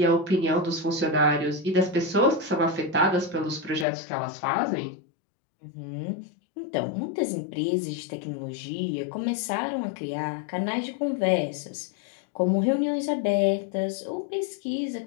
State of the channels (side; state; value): right; drops out; at 3.9 s